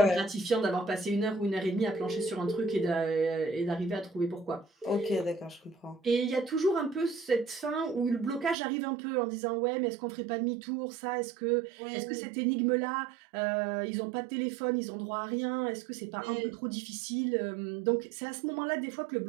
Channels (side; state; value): left; drops out; at 8.6 s